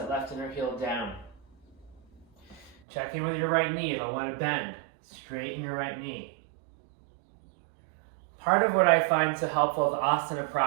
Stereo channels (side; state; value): left; drops out; at 2.8 s